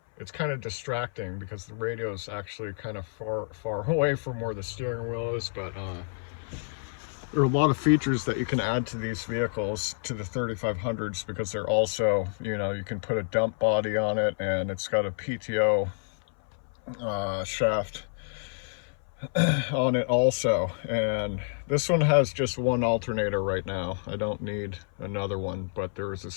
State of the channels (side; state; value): right; silent; 59 dB below the other